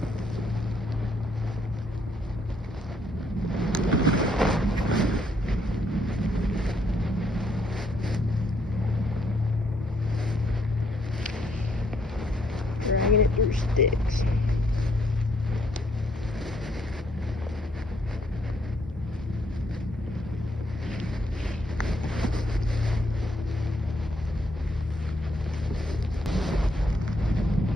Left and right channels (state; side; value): normal; both; correlation 0.71